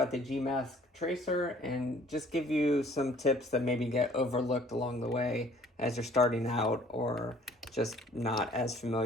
the Gmask Tracer and just give you some tips that maybe get overlooked along the way as you're starting out or just not as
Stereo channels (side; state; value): both; normal; correlation 0.56